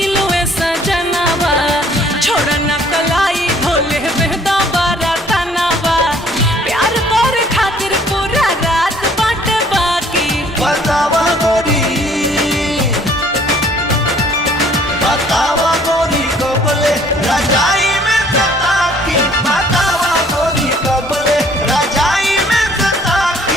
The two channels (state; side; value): normal; both; correlation 0.59